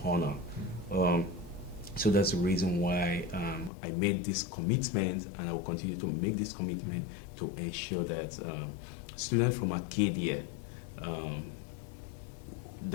honor. So that's the reason why I made this commitment, and I will continue to make this commitment to ensure that students from Arcadia um,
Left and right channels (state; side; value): drops out; right; at 3.7 s